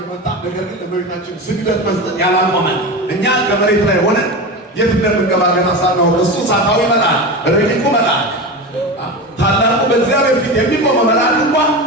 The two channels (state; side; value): normal; both; correlation 0.24